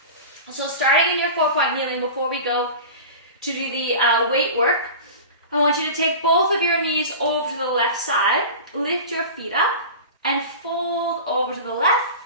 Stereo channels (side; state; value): both; inverted; correlation -0.33